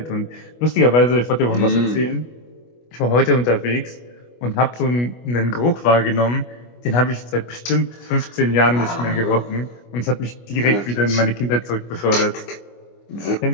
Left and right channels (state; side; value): late; right; 25 ms